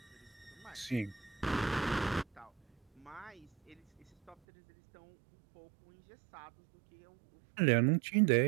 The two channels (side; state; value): left; drops out; at 4.4 s